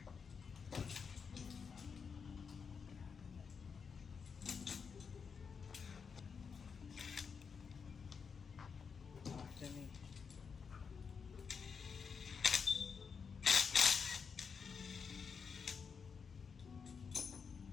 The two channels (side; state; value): right; quieter; 5.9 dB